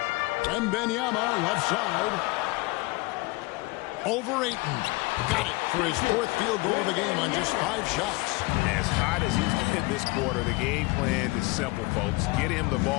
Wembanyama, left side. Over Ayton. Got it for his 4th field goal of the game on just 5 shots. As hot as he's been this quarter, the game plan is simple, folks. Get him the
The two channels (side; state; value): right; quieter; 23.5 dB